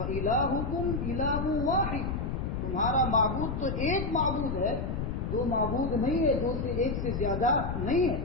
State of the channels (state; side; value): noise; left; rumble, 2 dB below the sound